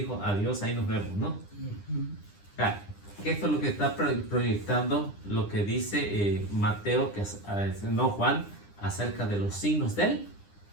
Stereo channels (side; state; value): right; late; 9.9 ms